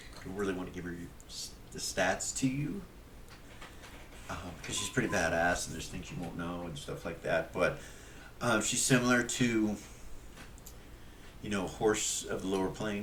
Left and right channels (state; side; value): identical; both; correlation 1.00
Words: really want to give her the stats to you because she's pretty badass, and there's things you won't know and stuff like that. But she's similar to, a horse of the lower